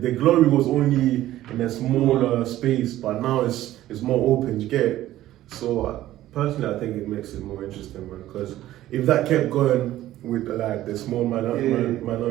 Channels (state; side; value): quieter; left; 14.3 dB